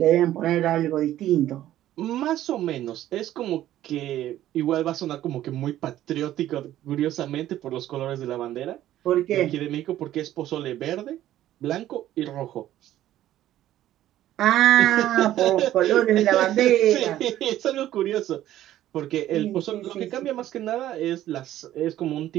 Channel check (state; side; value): quieter; left; 13.2 dB